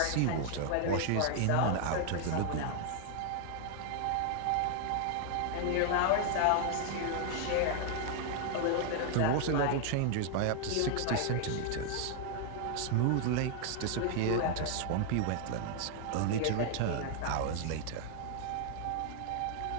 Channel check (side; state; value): both; different; correlation 0.00